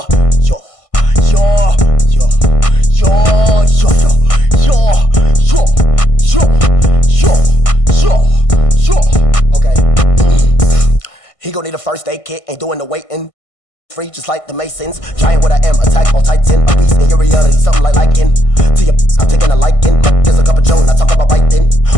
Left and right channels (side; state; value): right; late; 1.5 ms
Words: Okay. He gon' need a first aid kit, ain't doing the waiting. Free just like the Masons. Giant what I am, attack on Titan. A beast in your reality, something like liking. To your I'm taking a liking. There's a cup of Joan, I talk about biting.